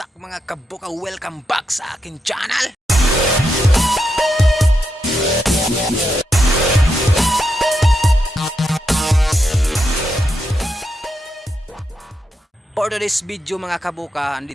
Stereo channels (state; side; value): normal; both; correlation 0.84